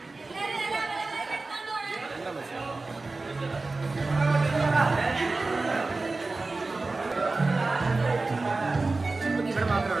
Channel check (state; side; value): quieter; left; 3.5 dB